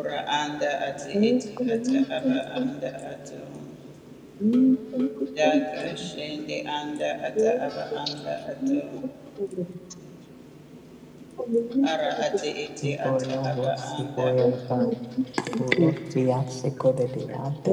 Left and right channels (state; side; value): identical; both; correlation 1.00